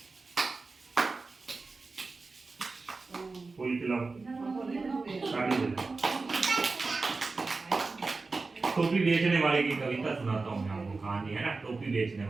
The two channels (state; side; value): quieter; left; 3.9 dB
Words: फूल खिलाओ, ताली बजाओ। टोपी बेचने वाले की कविता सुनाता हूँ मैं आपको, कहानी है ना, टोपी बेचने